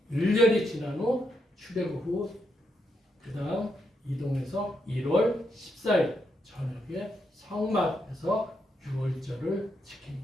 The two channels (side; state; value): both; normal; correlation 0.80